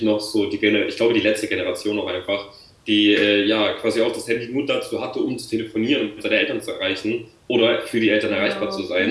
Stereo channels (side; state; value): both; identical; correlation 1.00